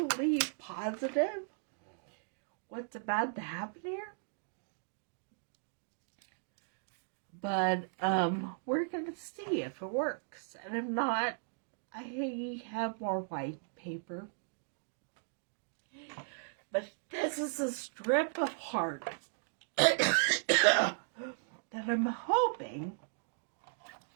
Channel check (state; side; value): silent; left; digital silence